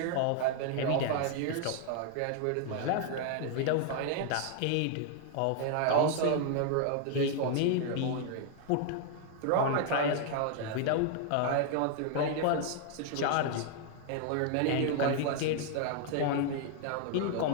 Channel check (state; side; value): different; both; correlation 0.00